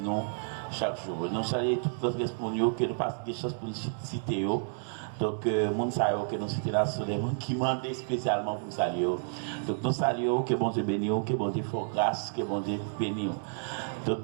nous chaque jour. Nous saluons toutes les responsables que nous passons des choses pour nous citer. Donc, mon salut que nous citons là sur les gens qui demandent spécialement pour nous saluer. Donc, nous saluons que bon Dieu bénisse, que bon Dieu fasse grâce, que bon Dieu bénisse.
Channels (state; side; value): silent; left; digital silence